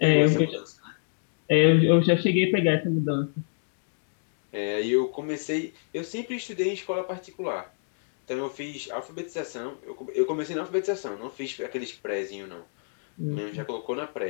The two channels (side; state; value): right; silent; digital silence